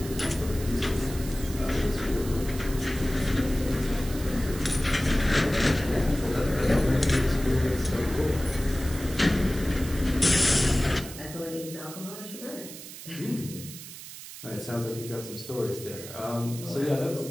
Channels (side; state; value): right; noise; hiss, 13 dB below the sound